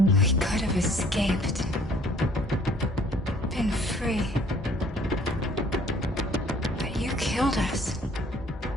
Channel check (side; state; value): both; normal; correlation 0.57